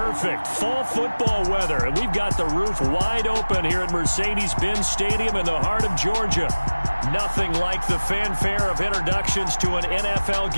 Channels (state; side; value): inverted; both; correlation -1.00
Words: Fall football weather. And we've got the roof wide open here at Mercedes-Benz Stadium in the heart of Georgia. Nothing like the fanfare of introductions to an NFL